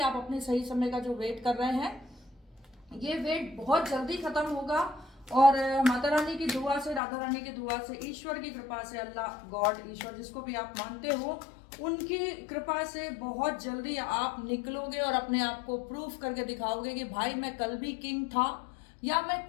अपने सही समय का जो वेट कर रहे हैं, ये वेट बहुत जल्दी खत्म होगा। और माता रानी की दुआ से, राधा रानी की दुआ से, ईश्वर की कृपा से, अल्लाह गॉड ईश्वर जिसको भी आप मानते हो, उनकी कृपा से बहुत जल्दी आप निकलोगे और अपने आप को प्रूफ करके दिखाओगे कि भाई मैं कल भी किंग था या मैं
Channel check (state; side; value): drops out; right; at 7.0 s